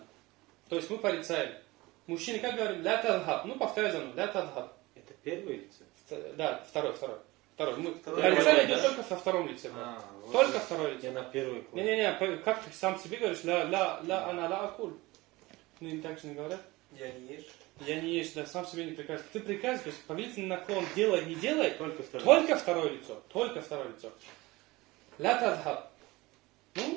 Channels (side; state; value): left; quieter; 21.1 dB